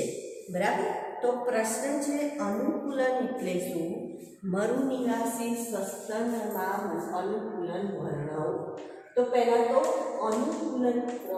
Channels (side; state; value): both; identical; correlation 1.00